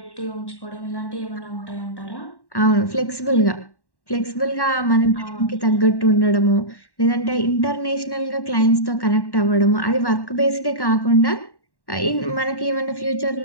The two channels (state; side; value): late; right; 1.1 ms